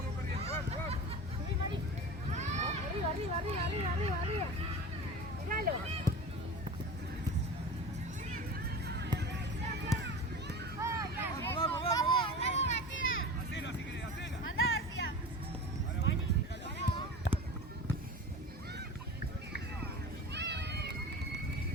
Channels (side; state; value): both; normal; correlation 0.33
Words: perdiendo, vamos. Sí, Mari. Arriba. Míralo. Hacelo si querés, hacelo. Andá, García.